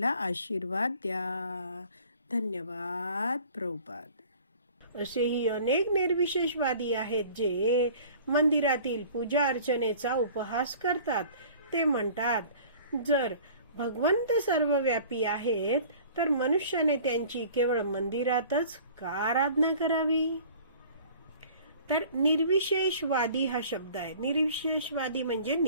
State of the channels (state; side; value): inverted; both; correlation -0.47